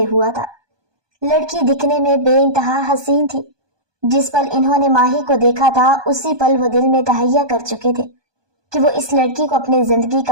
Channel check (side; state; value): left; late; 1.2 ms